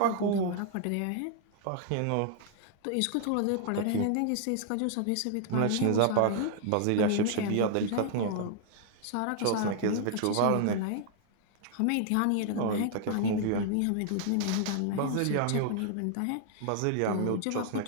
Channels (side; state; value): both; different; correlation 0.00